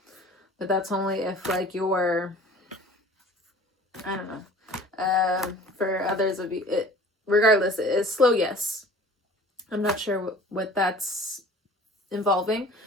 But that's only if like you're, I don't know. For others of you, regardless, it's slow yes. I'm not sure what that's involving.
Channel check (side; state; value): both; normal; correlation 0.46